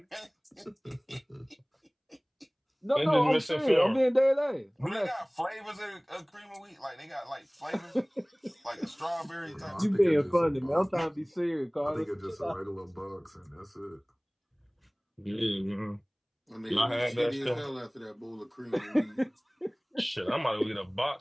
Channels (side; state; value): both; identical; correlation 1.00